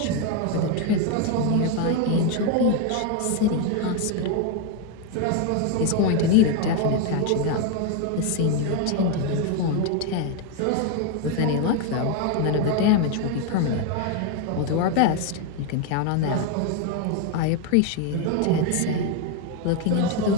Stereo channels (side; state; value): both; different; correlation 0.01